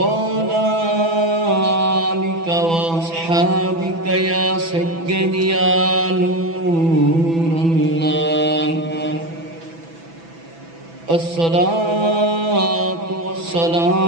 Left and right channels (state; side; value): late; left; 6.0 ms